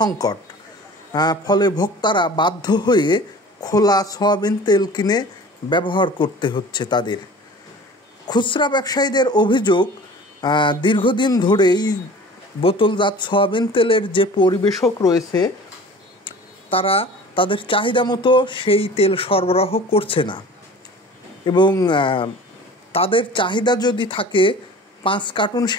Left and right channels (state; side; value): normal; both; correlation 0.42